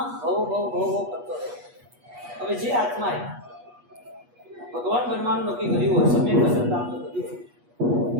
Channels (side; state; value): left; late; 8.3 ms